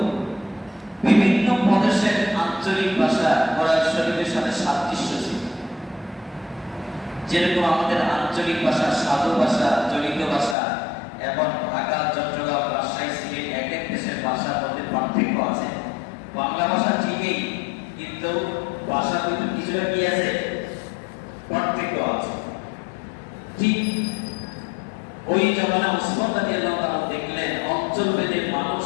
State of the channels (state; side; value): drops out; right; at 10.6 s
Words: বিভিন্ন প্রদেশের আঞ্চলিক ভাষা কোরআন শরীফের সাথে সাদৃশ্য ছিল। যেরকম আমাদের আঞ্চলিক ভাষা, সাধু ভাষা, চলিত ভাষা এবং ঢাকা, চট্টগ্রাম, রাজশাহী, সিলেট এক এক দেশের ভাষার মধ্যে পার্থক্য আছে। বাংলা ভাষা ঠিকই, কিন্তু ভাষার ভিতরে কিছুটা কি আছে, পার্থক্য আছে। ঠিক ওই জমানা উসমান রাদিয়াল্লাহু তাআলা দেখলেন অঞ্চলভেদে মানুষ